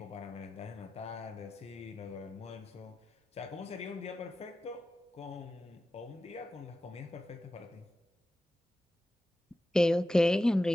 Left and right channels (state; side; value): normal; both; correlation 0.93